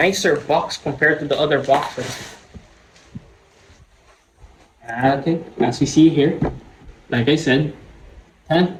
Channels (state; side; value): identical; both; correlation 1.00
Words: box compared to the other boxes. Okay, as we see here, like I said,